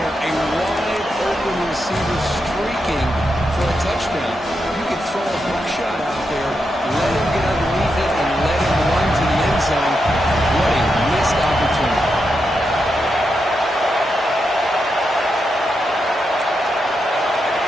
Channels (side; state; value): both; normal; correlation 0.85